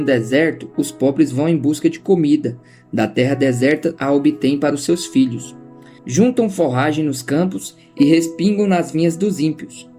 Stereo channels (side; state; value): both; identical; correlation 1.00